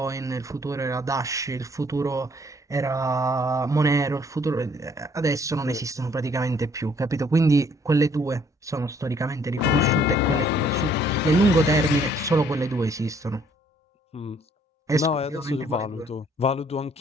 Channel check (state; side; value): normal; both; correlation 0.63